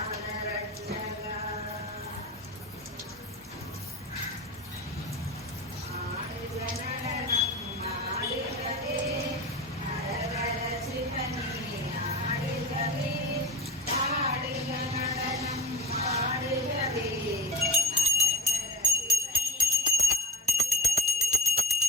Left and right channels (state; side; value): normal; both; correlation 0.32